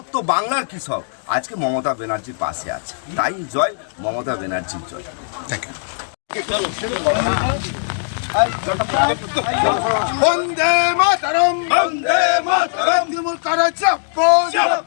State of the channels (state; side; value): silent; right; digital silence